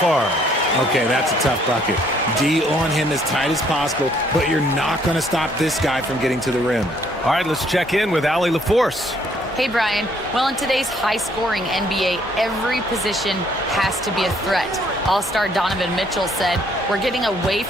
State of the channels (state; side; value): normal; both; correlation 0.65